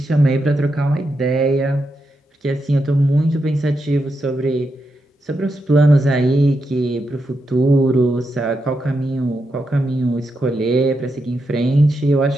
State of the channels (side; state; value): both; normal; correlation 0.85